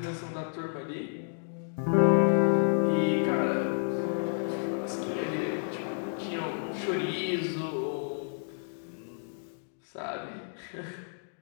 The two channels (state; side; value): silent; right; digital silence